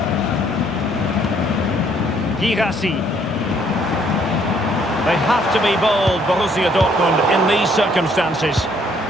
Guirassy. They have to be bold, Borussia Dortmund, in these circumstances.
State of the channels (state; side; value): normal; both; correlation 0.65